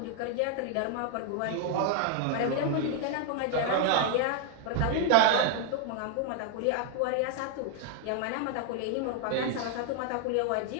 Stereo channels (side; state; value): both; different; correlation 0.00